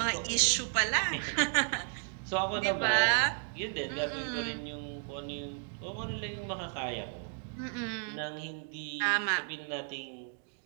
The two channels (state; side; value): silent; left; 56 dB below the other